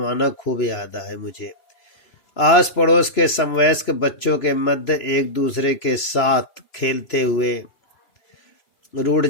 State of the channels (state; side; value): late; right; 3.0 ms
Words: खूब याद है मुझे। आस पड़ोस के समवयस्क बच्चों के मध्य एक दूसरे के साथ खेलते हुए रूठ